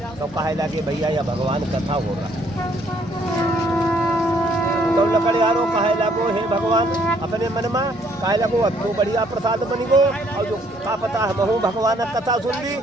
तो कहे लगे भैया या भगवान कथा हो रहा। तो लकड़हारो कहे लगो हे भगवान अपने मन में कहे लगो अब तो बढ़िया प्रसाद बनी गो, और जो का पता हम हूँ भगवान कथा सुन ली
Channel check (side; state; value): both; normal; correlation 0.65